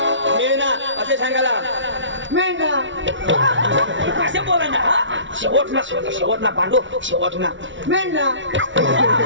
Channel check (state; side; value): late; left; 0.55 ms